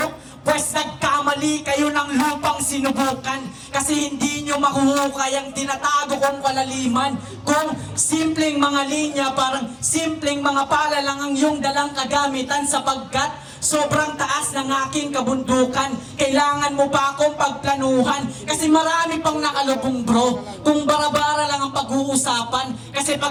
Pwes nagkamali kayo ng lupang sinubukan kasi hindi nyo makuhukay ang tinatago kong kalaliman. Kung simpleng mga linya, parang simpleng mga pala lang ang iyong dalang kagamitan sapagkat sobrang taas ng aking kabundukan. Kailangan mo pa akong pagplanuhan kasi marami pang nakalubong bro. Kung bara-bara lang ang pag-uusapan kasi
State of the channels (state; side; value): identical; both; correlation 1.00